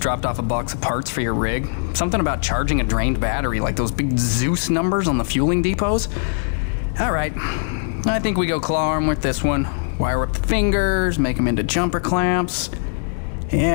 off a box of parts for your rig. Something about charging a drained battery, like those big Zeus numbers on the fueling depots. All right, I think we go claw arm with this one. Wire up the fingers, make them into jumper clamps.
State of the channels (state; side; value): silent; right; digital silence